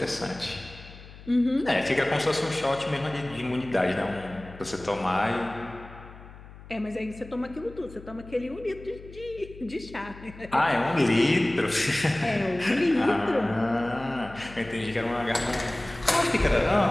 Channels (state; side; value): noise; left; hum, 18 dB below the sound